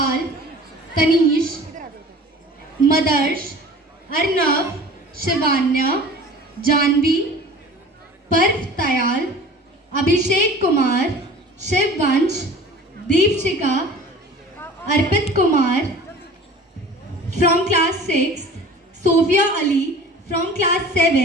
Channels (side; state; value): both; normal; correlation 0.43